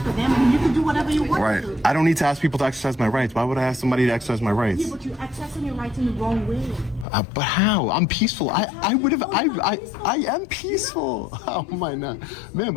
with them, and you can do whatever you want Right. to. I don't need to ask people to exercise my rights. Why would I ask somebody to exercise my rights? Yeah, but you're accessing your rights in the wrong way. But how? I'm peaceful. I am peaceful. How am I not? Ma'am,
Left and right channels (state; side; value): drops out; right; at 7.1 s